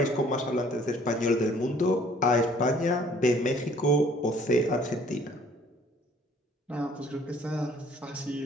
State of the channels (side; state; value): both; normal; correlation 0.57